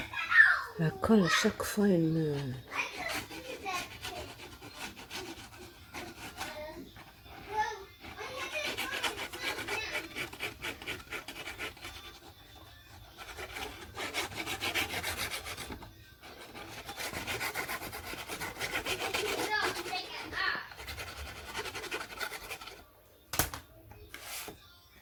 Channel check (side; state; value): both; identical; correlation 1.00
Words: La colle, à chaque fois, elle me...